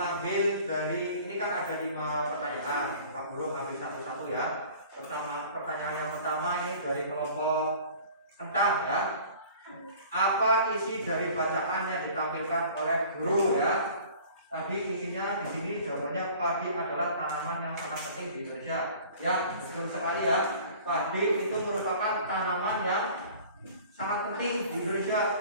dari ini kan ada 5 pertanyaan. Pak Guru ambil satu-satu ya. Pertanyaan yang pertama ini dari kelompok kentang ya. Apa isi dari bacaan yang ditampilkan oleh guru ya? Tadi intinya di sini jawabannya padi adalah tanaman yang sangat penting di Indonesia. Ya, betul sekali ya. Padi itu merupakan tanaman yang sangat penting di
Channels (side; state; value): both; inverted; correlation -0.47